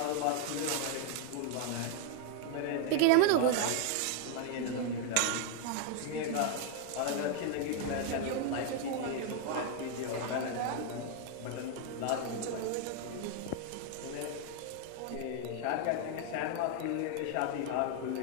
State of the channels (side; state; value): both; different; correlation 0.01